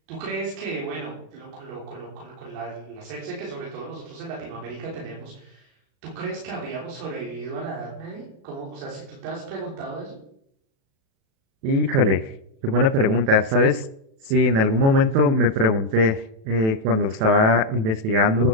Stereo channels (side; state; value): left; late; 37 ms